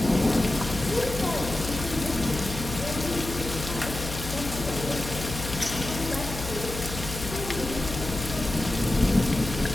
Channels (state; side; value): noise; left; hum, 8 dB below the sound